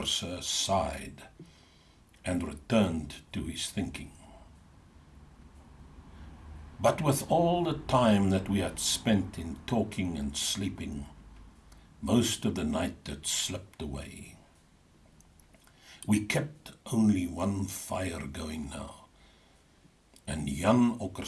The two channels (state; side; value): identical; both; correlation 1.00